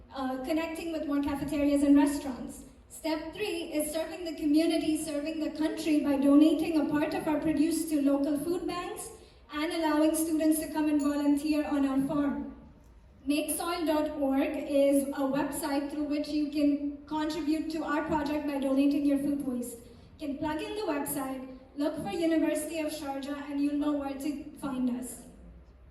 connecting with more cafeterias and restaurants. Step 3 is serving the community, serving the country by donating a part of our produce to local food banks and allowing students to come and volunteer on our farm. Makesoil.org is a website through which you can contribute to our project by donating your food waste. You can plug in the website, look for University of Sharjah, and you'll know where to find us.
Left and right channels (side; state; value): both; identical; correlation 1.00